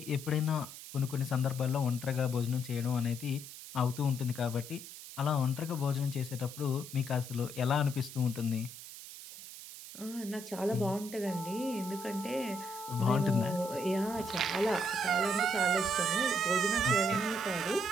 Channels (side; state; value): right; noise; hiss, 13 dB below the sound